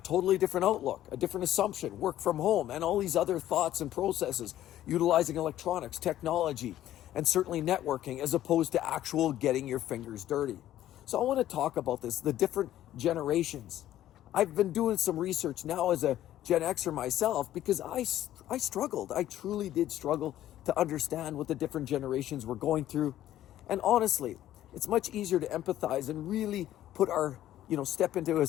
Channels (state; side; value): quieter; right; 12.9 dB